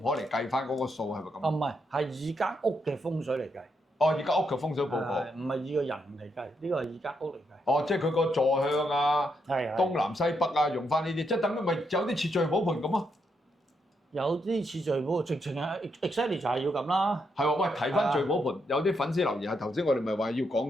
嚟計翻嗰個數係咪咁？唔係，係以間屋嘅風水嚟計。以間屋嘅風水報告，唔係以個人嚟計，呢個係以間屋嚟計。即係佢個坐向啊，東南西北啊，用翻呢啲，即係等於咪有啲似聚寶盆咁啊？有啲似聚寶，直情係 exactly 就係要咁啦。係喎，喂，提翻聚寶盆，有啲粉絲留言係頭先我哋咪話要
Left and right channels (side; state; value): both; normal; correlation 0.79